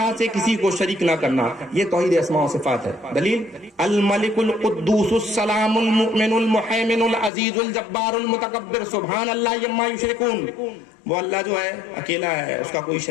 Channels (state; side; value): drops out; right; at 7.3 s